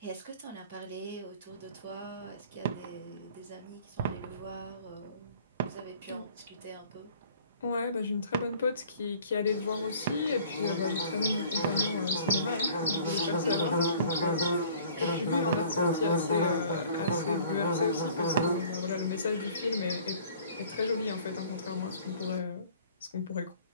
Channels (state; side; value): inverted; both; correlation -0.51